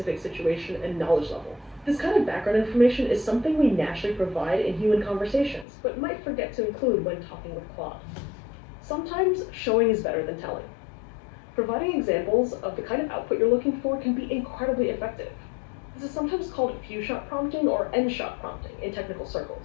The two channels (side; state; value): right; drops out; at 5.7 s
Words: situation and knowledge level. This kind of background information is something we naturally provide in human conversations, but might forget to include when talking with Claude. Sometimes showing is better than telling. Providing examples of the kind of output you're looking for can be incredibly effective. This is sometimes called few-shot prompting or n-shot prompting in technical